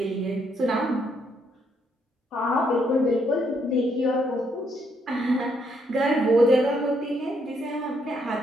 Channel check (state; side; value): normal; both; correlation 0.74